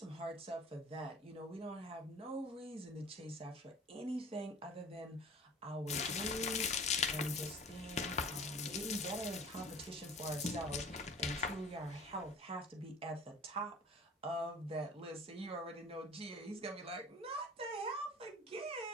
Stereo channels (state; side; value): normal; both; correlation 0.44